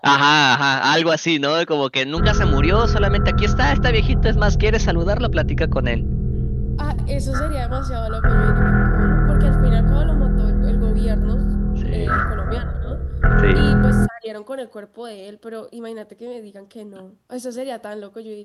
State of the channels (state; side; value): identical; both; correlation 1.00